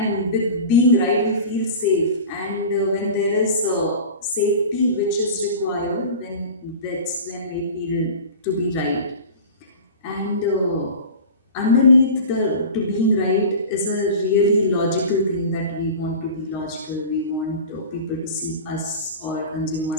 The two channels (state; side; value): inverted; both; correlation -0.35